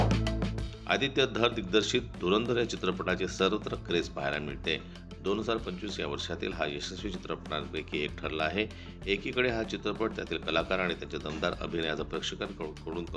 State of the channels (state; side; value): identical; both; correlation 1.00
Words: आदित्य धर दिग्दर्शित धुरंधर या चित्रपटाची सर्वत्र क्रेज पाहायला मिळते. 2025 या वर्षातील हा यशस्वी चित्रपटांपैकी एक ठरला आहे. एकीकडे हा चित्रपट त्यातील कलाकार आणि त्यांच्या दमदार अभिनयाचं प्रेक्षकांकडून